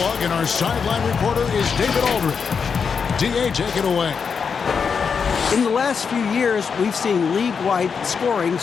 and our sideline reporter is David Aldridge. DA, take it away. In the last few years, we've seen league-wide scoring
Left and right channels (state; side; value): quieter; right; 6.0 dB